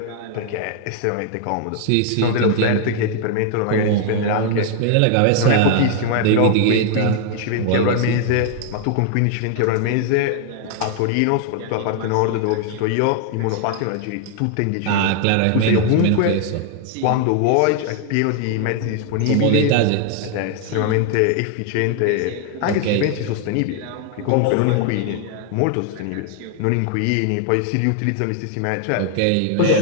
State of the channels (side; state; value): both; different; correlation 0.00